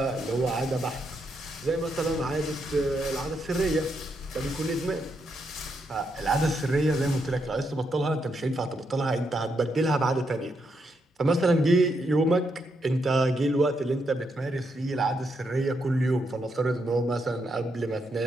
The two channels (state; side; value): normal; both; correlation 0.80